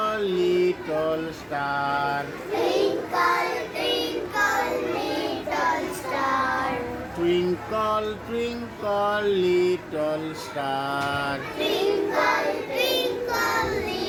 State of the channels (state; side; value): identical; both; correlation 1.00